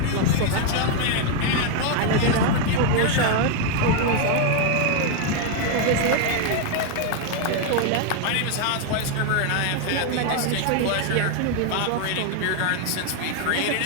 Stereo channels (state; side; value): different; both; correlation 0.01